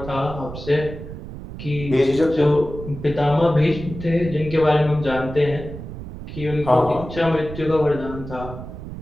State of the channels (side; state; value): right; noise; rumble, 11 dB below the sound